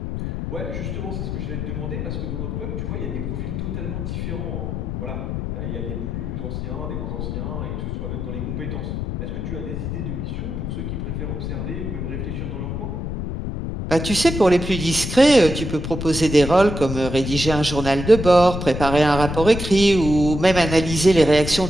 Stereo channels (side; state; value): left; noise; rumble, 4 dB below the sound